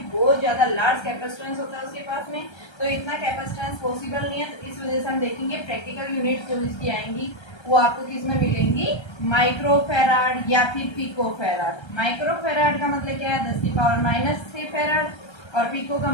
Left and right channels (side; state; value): right; late; 1.3 ms